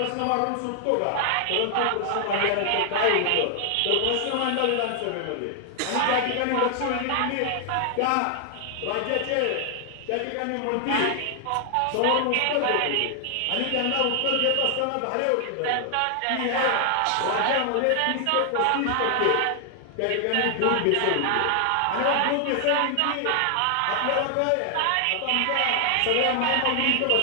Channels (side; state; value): both; different; correlation 0.00